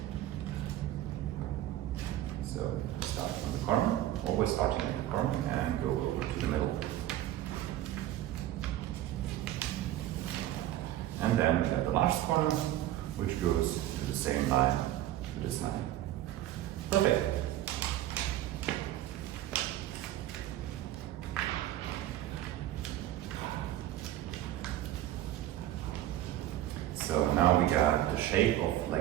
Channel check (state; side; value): quieter; left; 13.7 dB